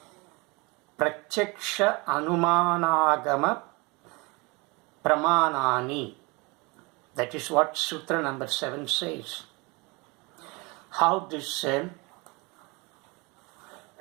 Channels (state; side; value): quieter; left; 27.1 dB